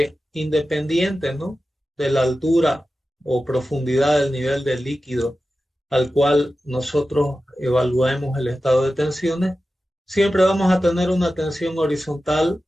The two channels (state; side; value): normal; both; correlation 0.93